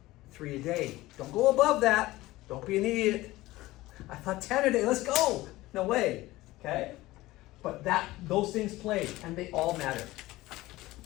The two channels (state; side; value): quieter; right; 18.2 dB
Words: 3 a day. Don't go above that. Don't be an idiot. I thought 10 a day, let's go. No way. Okay? But those things play, and they all matter.